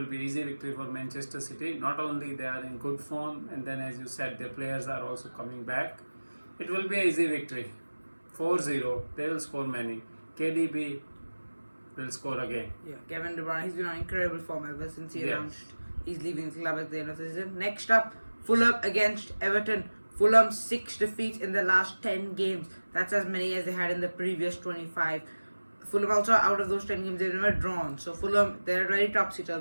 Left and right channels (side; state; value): both; inverted; correlation -1.00